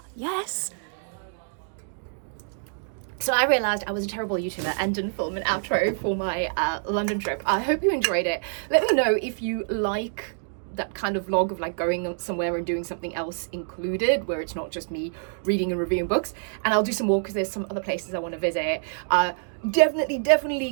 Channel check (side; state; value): left; silent; digital silence